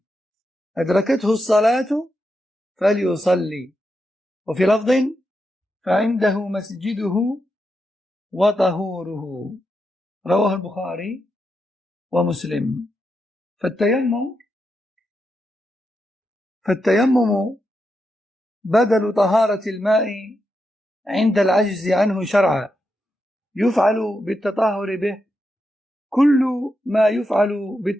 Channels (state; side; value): normal; both; correlation 0.85